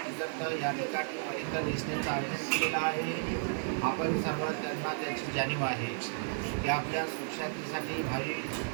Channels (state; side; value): silent; left; digital silence